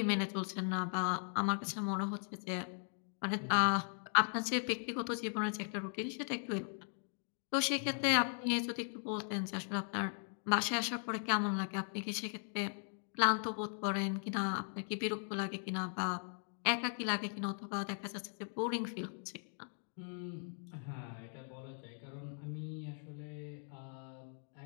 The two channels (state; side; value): silent; right; 52 dB below the other